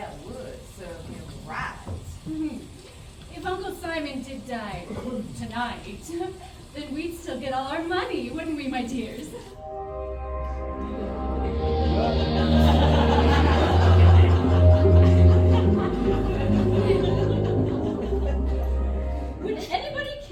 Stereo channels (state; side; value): identical; both; correlation 1.00